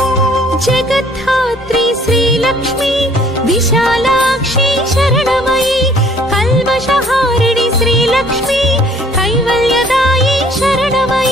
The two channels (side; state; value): both; normal; correlation 0.57